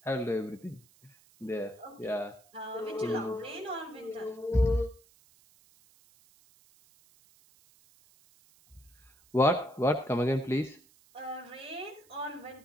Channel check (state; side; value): noise; right; hiss, 29 dB below the sound